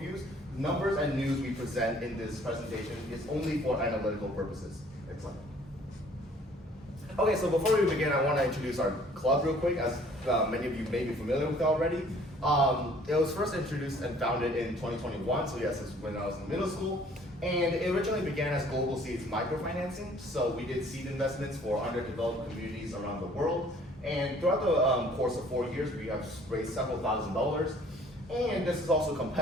Numbers and news we present in this presentation is only for analytical purposes. Excellent. Okay, so before we begin, I want to introduce our club real quick, as many of you may be familiar with it already. It was first introduced and founded in 2021, so yes, it's when I was in middle school. And it originally began as Global Seeds microfinancing. So we did seed investments for underdeveloped communities around the world. And throughout the course of 4 years, we have raised several $1,000s. And this is also a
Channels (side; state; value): both; normal; correlation 0.56